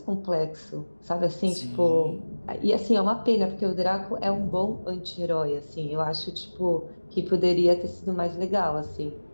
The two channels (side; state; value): both; inverted; correlation -1.00